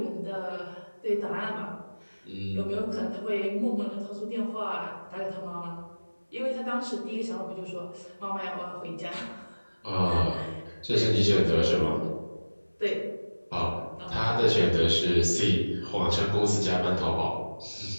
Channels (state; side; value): inverted; both; correlation -1.00